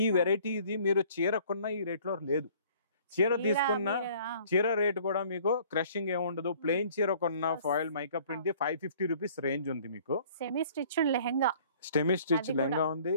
వెరైటీ ఇది మీరు చీర కొన్న ఈ రేట్ లో లేదు. చీర తీసుకున్న చీర రేట్ కూడా మీకు క్రషింగ్ ఏముండదు. ప్లెయిన్ చీర కొన్న ఫాయిల్ మైకప్ ప్రింట్ 550 రూపీస్ రేంజ్ ఉంది మీకు. Semi stitched lehenga, semi stitch lehenga ఉంది.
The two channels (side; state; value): both; inverted; correlation -0.54